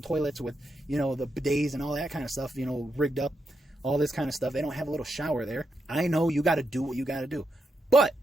toilets with, you know, the bidets and all that kind of stuff, you know, rigged up, all this kind of stuff. They don't have a little shower there. I know you got to do what you got to do. But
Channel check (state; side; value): normal; both; correlation 0.83